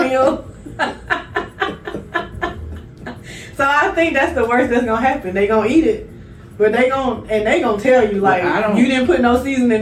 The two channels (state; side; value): identical; both; correlation 1.00